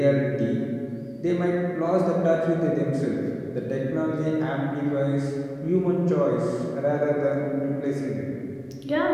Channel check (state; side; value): identical; both; correlation 1.00